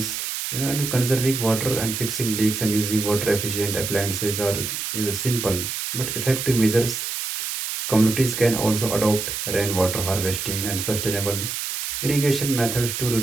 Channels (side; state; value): right; noise; hiss, 4 dB below the sound